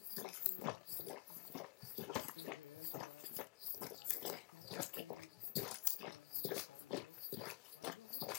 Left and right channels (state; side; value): quieter; right; 22.9 dB